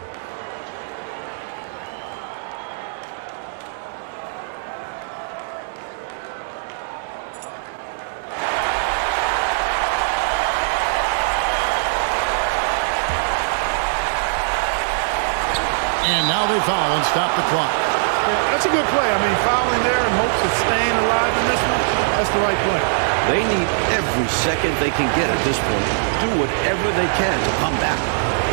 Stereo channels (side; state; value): left; silent; digital silence